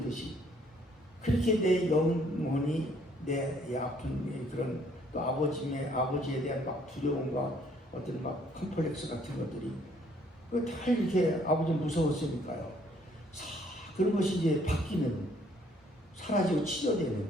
그렇게 내 영혼이 내 아픈 그런 또 아버지에 대한 막 두려움과 어떤 막 컴플렉스 같은 것들이 다 이렇게 아버지 무서웠으니까요. 그런 것이 이제 바뀌는 사라지고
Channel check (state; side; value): normal; both; correlation 0.64